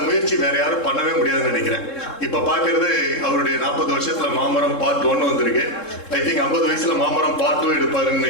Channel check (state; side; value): late; right; 3.7 ms